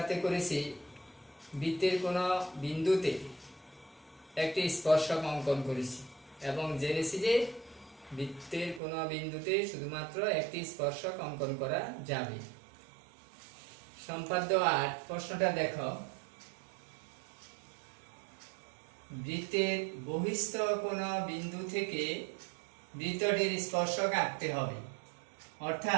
করেছি বৃত্তের কোনো বিন্দুতে একটি স্পর্শক অঙ্কন করেছি এবং জেনেছি যে বৃত্তের কোনো বিন্দুতে শুধুমাত্র একটি স্পর্শক অঙ্কন করা যাবে। সম্পাদ্য 8 প্রশ্নটা দেখো। বৃত্তের বহিস্থ কোনো বিন্দু থেকে বৃত্তটির স্পর্শক আঁকতে হবে,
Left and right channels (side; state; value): left; drops out; at 8.8 s